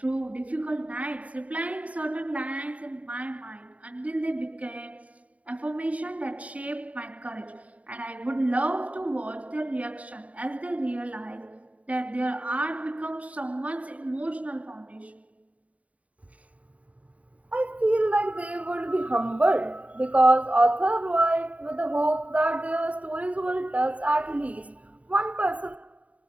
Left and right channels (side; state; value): left; late; 0.068 ms